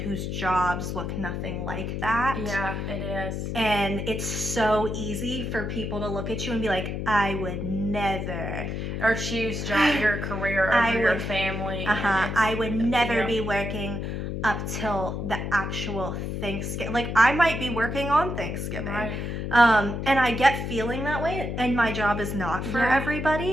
jobs look nothing like that. Yeah, it is. And it's so easy for people to look at you and be like, I would never. Or choose your career over your family. I would never be working up till the actual Thanksgiving. Like, I might be working on Thanksgiving. Right. And I get feeling that way, and my job is not for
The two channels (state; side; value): noise; left; hum, 4 dB below the sound